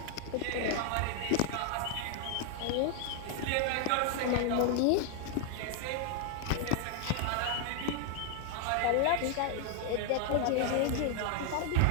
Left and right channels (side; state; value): both; different; correlation 0.00